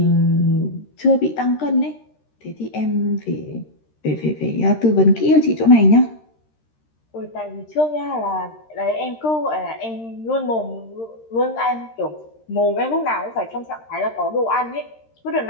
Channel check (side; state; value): right; late; 13 ms